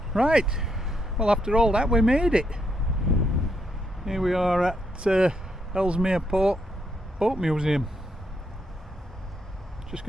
Right, well, after all that we made it. Here we are at Ellesmere Port Boat Museum. Just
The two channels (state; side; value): normal; both; correlation 0.77